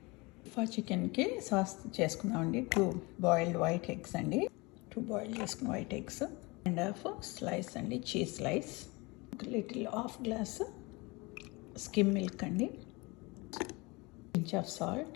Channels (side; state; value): right; quieter; 25.4 dB